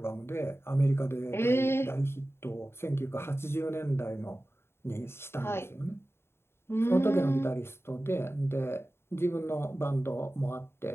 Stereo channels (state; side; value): late; right; 0.12 ms